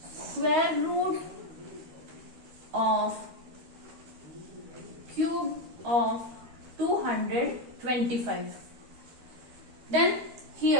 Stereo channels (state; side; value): late; left; 12 ms